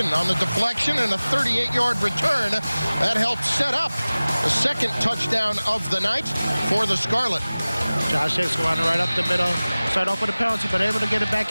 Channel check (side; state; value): both; inverted; correlation -0.99